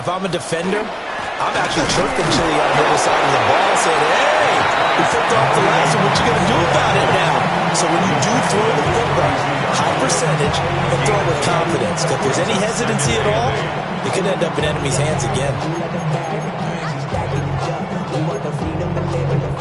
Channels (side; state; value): both; identical; correlation 1.00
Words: I'm a defender, I'm actually chirping Chili on the other side of the ball, saying, hey, we flipped off the last one. What you going to do about it now? So when you do throw the football, high percentage, and throw it with confidence. If there's any hesitancy at all, it could end up in enemy's hands again.